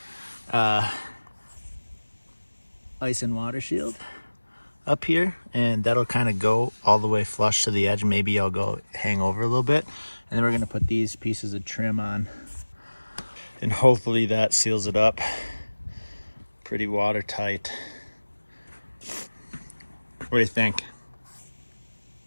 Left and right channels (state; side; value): inverted; both; correlation -1.00